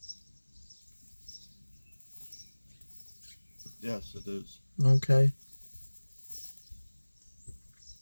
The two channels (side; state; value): both; inverted; correlation -1.00